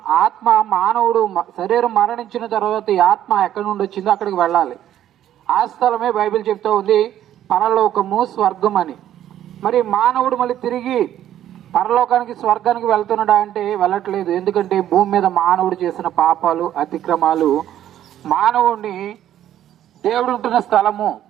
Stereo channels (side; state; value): left; quieter; 11.6 dB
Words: ఆత్మ, మానవుడు శరీరం మరణించిన తర్వాత ఈ ఆత్మ ఎక్కడి నుండి వచ్చిందో అక్కడికి వెళ్ళాలి. ఆ స్థలమే బైబిల్ చెప్తూ ఉంది పరలోకము, స్వర్గం అని. మరి మానవుడు మళ్ళీ తిరిగి పరలోకానికి, స్వర్గానికి వెళ్తున్నాడా అంటే వెళ్ళట్లేదు. ఎందుకంటే భూమి మీద మానవుడు చేసిన పాపాలు, అతిక్రమాలు మానవుడిని దేవుడు ఉంటున్న స్థలము